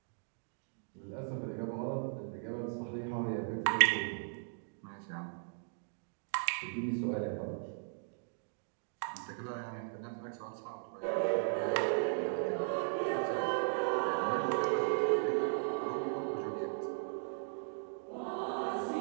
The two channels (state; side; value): silent; left; digital silence